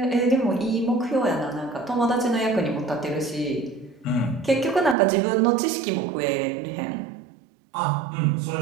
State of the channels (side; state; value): left; drops out; at 5.0 s